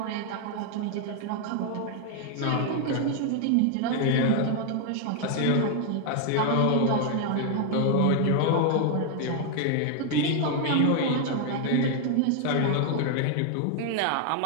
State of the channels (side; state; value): both; different; correlation 0.00